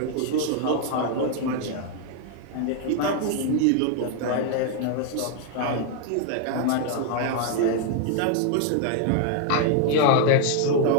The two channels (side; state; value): both; different; correlation 0.00